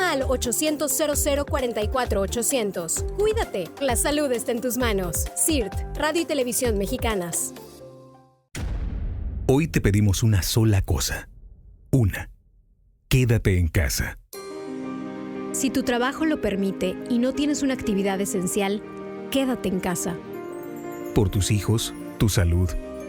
al 800-0044-800. Cuídate, la salud está en tus manos. CIRT, Radio y Televisión Mexicanas. Hoy te pedimos una sola cosa. Una. Quédate en casa. Si tu trabajo lo permite y no tienes una actividad esencial, quédate en casa. Por tus hijos, tu salud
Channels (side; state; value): both; identical; correlation 1.00